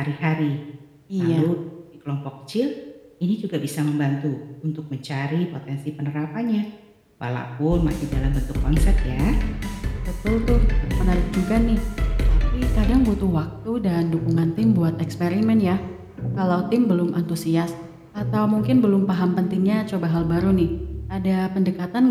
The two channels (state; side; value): identical; both; correlation 1.00